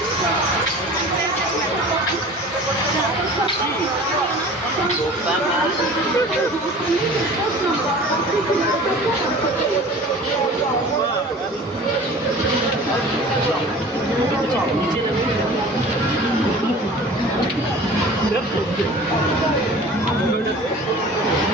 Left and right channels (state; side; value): normal; both; correlation 0.42